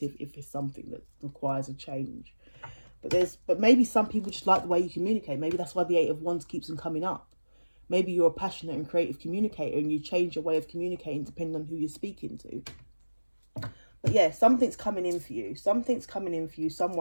if it's something that requires a change. But maybe some people just like the way you communicate. Maybe that's why the 8 of Wands keeps on coming up. Maybe you're a passionate and creative communicator and you change your way of communicating depending on who you're speaking to. But yeah, something's coming in for you. Something's coming in for you.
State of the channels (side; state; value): both; inverted; correlation -1.00